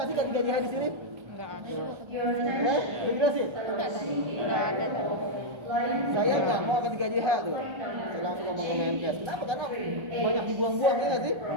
sih K3JH di sini? Enggak ada. Udah jelasin? Enggak ada. Saya nggak mau K3JH tuh. Saya langsung ngomong ke Menkes. Kenapa? Karena banyak dibuang-buang ya nggak sih?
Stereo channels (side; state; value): left; late; 1.3 ms